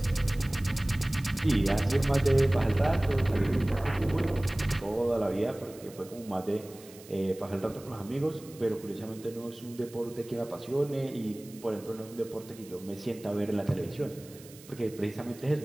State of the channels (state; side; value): noise; right; hiss, 21 dB below the sound